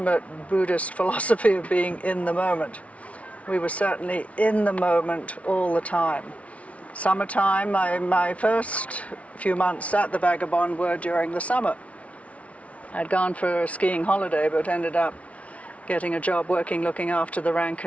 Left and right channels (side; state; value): right; late; 0.065 ms